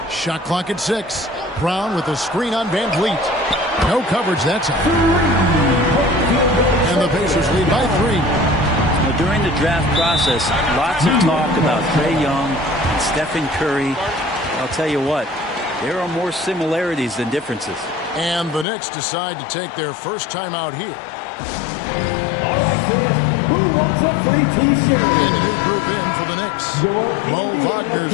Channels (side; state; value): right; drops out; at 18.7 s